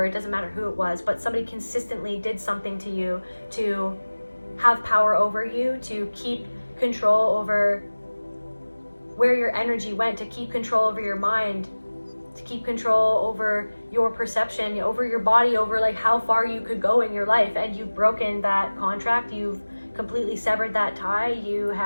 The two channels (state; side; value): inverted; both; correlation -1.00